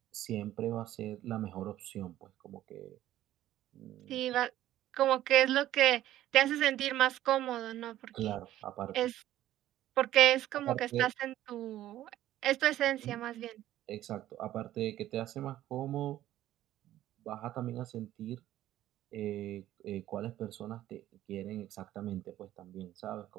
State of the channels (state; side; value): quieter; left; 13.6 dB